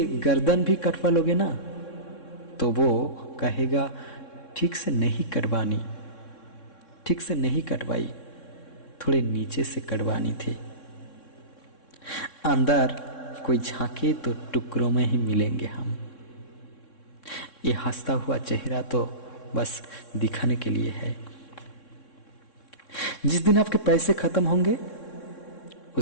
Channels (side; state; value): right; late; 3.6 ms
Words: गर्दन भी कटवा लोगे ना, तो वो कहेगा ठीक से नहीं कटवानी, ठीक से नहीं कटवाई, थोड़े नीचे से कटवानी थी। अंदर कोई झांके तो टुकड़ों में ही मिलेंगे हम। ये हंसता हुआ चेहरा तो बस दिखाने के लिए है। जिस दिन आपके पैसे खत्म होंगे